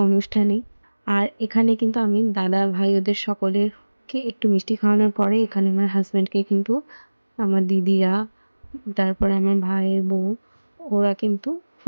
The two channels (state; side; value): inverted; both; correlation -1.00